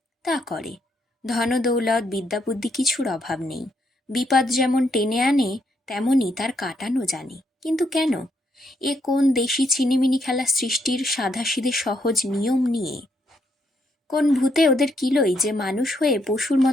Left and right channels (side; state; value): both; normal; correlation 0.75